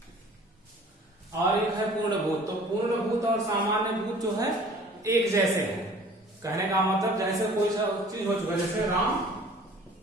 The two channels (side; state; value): both; normal; correlation 0.49